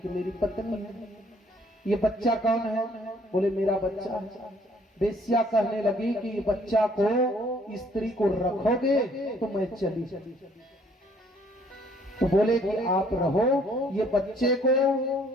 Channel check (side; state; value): both; normal; correlation 0.62